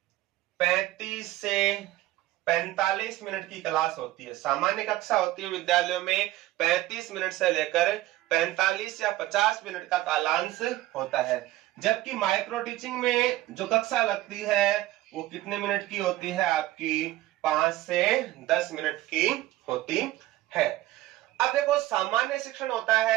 35 से 45 मिनट की क्लास होती है। सामान्य कक्षा होती है विद्यालयों में 35 मिनट से लेकर 45 या 50 मिनट का कालांश होता है। जबकि माइक्रो टीचिंग में जो कक्षा लगती है वो कितने मिनट की होती है आपकी 5 से 10 मिनट की होती है। अब देखो सामान्य शिक्षण होता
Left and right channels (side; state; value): left; quieter; 16.1 dB